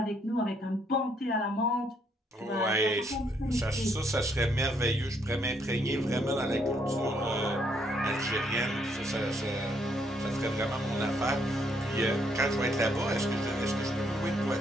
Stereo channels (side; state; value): both; normal; correlation 0.71